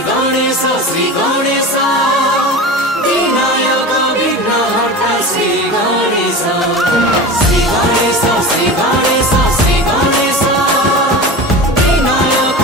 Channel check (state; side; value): normal; both; correlation 0.30